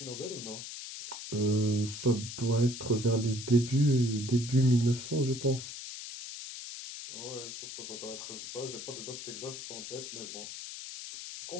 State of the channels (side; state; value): left; noise; hiss, 9 dB below the sound